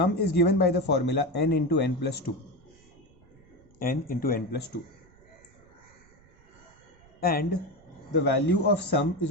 is given by the formula n into n plus 2. N into n plus 2. And the value of sum is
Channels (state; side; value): noise; right; rumble, 29 dB below the sound